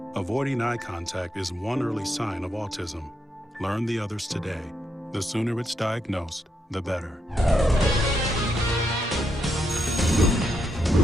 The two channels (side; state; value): both; normal; correlation 0.80